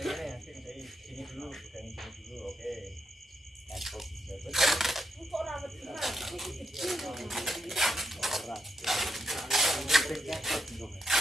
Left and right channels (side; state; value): both; normal; correlation 0.81